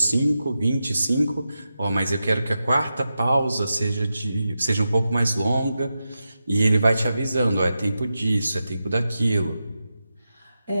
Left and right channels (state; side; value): inverted; both; correlation -0.90